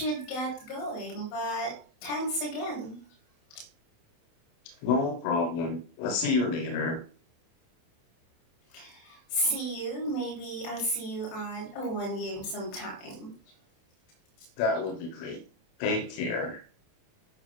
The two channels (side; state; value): right; late; 27 ms